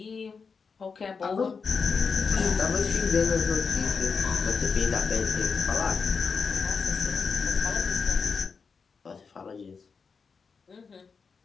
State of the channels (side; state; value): right; quieter; 5.3 dB